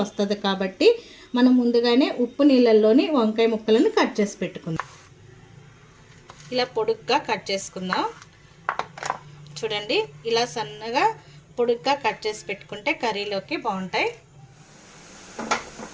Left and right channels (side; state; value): both; identical; correlation 1.00